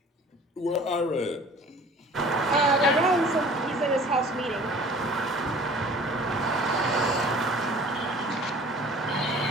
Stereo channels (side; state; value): both; normal; correlation 0.47